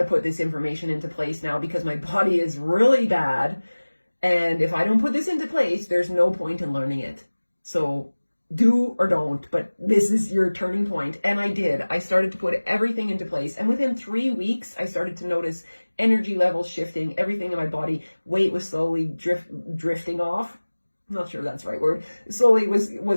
put this information into place now, because my body is really bad. And if I don't put this into place, there's no point in learning it. So do or don't, but this is your turning point. And I did. I started to put everything into place. And within 3 weeks, I started to notice energy levels shifting, everything in my body. Weight was slowly drifting off. I'm not sure that's the right word, slowly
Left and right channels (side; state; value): both; inverted; correlation -1.00